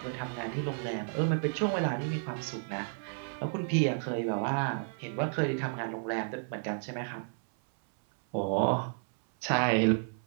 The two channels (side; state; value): left; silent; 56 dB below the other